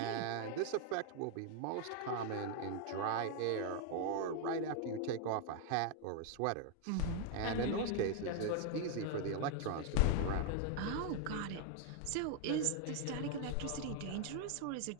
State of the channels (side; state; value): both; different; correlation 0.00